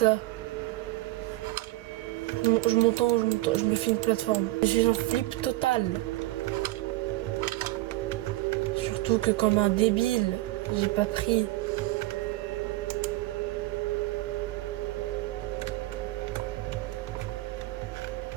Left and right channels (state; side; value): quieter; left; 18.7 dB